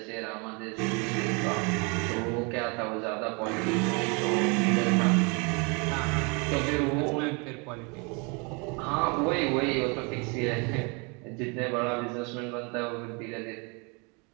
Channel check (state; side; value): quieter; left; 31.7 dB